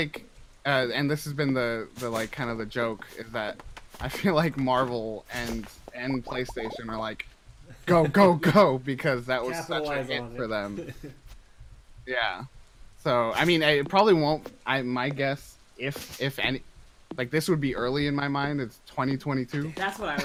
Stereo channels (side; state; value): both; identical; correlation 1.00